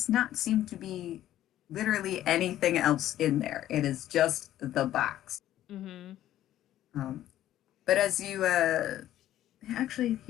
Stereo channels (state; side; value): quieter; right; 12.9 dB